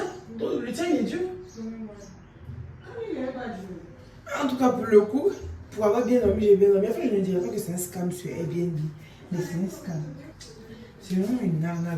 Le tien, il est dur? En tout cas, pour le coup, pour avoir bien dormi, j'ai bien dormi. En fait, je ne dirais pas que c'est un scam sur Airbnb, mais c'est un scam. C'est vraiment une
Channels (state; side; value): identical; both; correlation 1.00